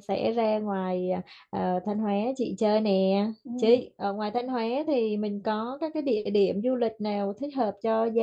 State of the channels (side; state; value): both; identical; correlation 1.00